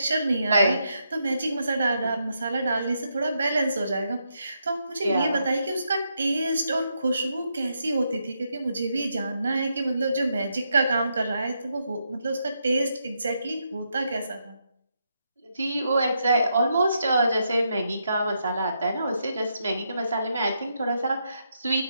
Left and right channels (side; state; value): both; inverted; correlation -0.81